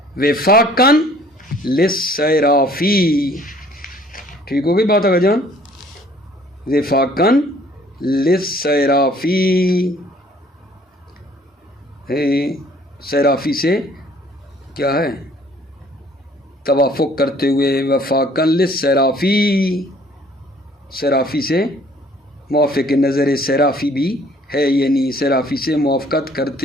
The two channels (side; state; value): both; normal; correlation 0.57